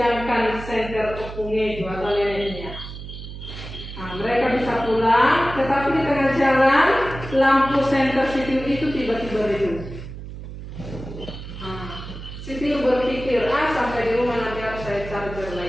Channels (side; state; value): right; noise; hum, 11 dB below the sound